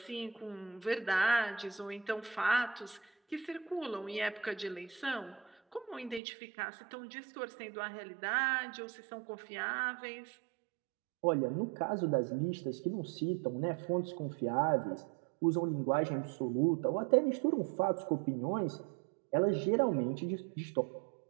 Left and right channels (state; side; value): drops out; left; at 6.2 s